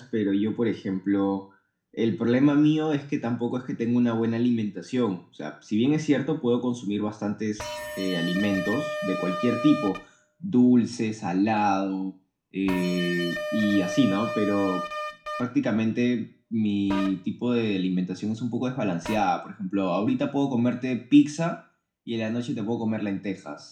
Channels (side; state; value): both; identical; correlation 1.00